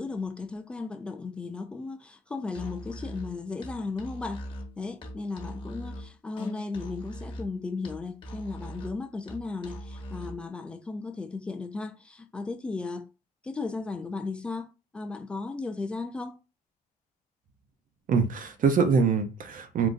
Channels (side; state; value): both; normal; correlation 0.60